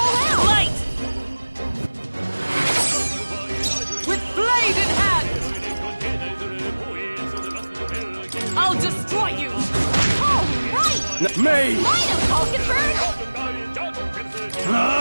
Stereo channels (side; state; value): both; inverted; correlation -1.00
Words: out. Light! With blade in hand! I'll destroy you! All right. Me! Line up, Falkenberg.